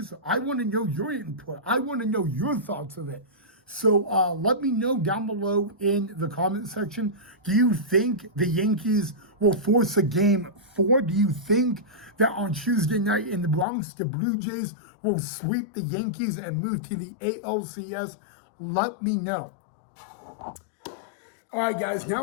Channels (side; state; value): right; drops out; at 13.7 s